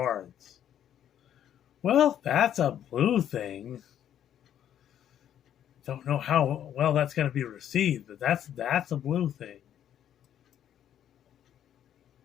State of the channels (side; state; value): right; quieter; 10.3 dB